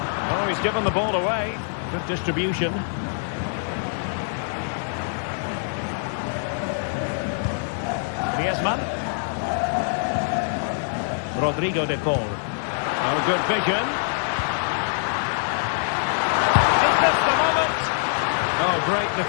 Oh, he's given the ball away. Good distribution. Griezmann. Rodrigo de Paul. Oh, good vision. Is this the moment? Oh, great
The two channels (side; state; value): right; silent; digital silence